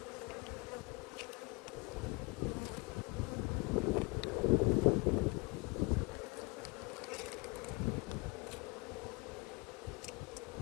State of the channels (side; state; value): right; quieter; 27.1 dB